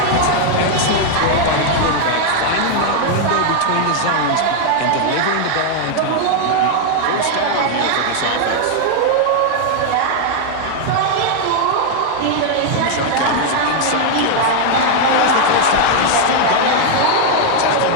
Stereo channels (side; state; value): both; different; correlation 0.00